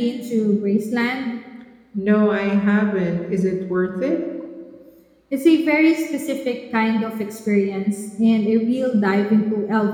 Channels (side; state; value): both; identical; correlation 1.00